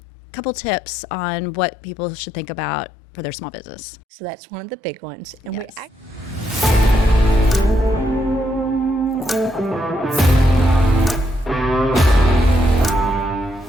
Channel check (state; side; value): normal; both; correlation 0.78